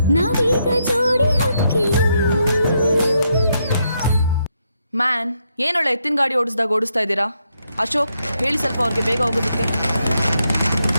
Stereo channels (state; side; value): inverted; both; correlation -0.79